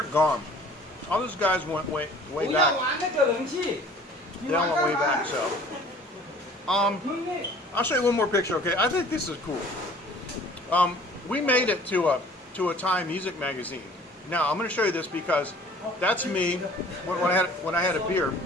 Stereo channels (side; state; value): both; normal; correlation 0.50